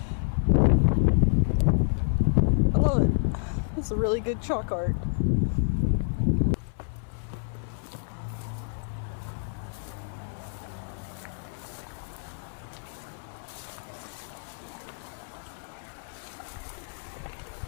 I love it. That's a really good chalk art.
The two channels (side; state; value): right; silent; 59 dB below the other